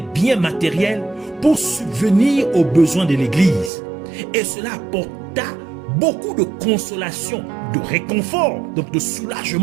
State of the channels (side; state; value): left; drops out; at 3.7 s